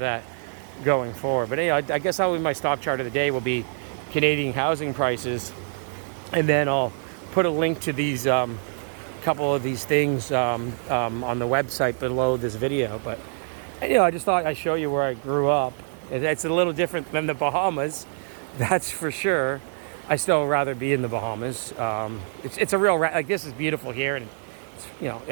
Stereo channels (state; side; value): silent; left; digital silence